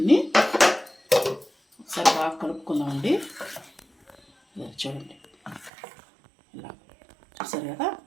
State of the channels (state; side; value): drops out; left; at 5.7 s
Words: ఒకసారి బాగా కలుపుకుందామండి. చూడండి, ఇలా చూసారు కదా.